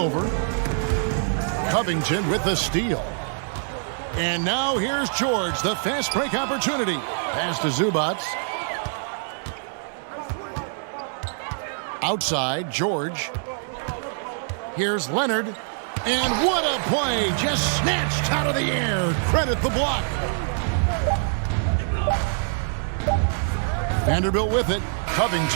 Covington with the steal. And now here's George, the fast break opportunity. Pass to Zubats. Outside, George. Here's Leonard. And what a play, just snatched out of the air. Credit the block. Vanderbilt with it.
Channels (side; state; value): left; silent; digital silence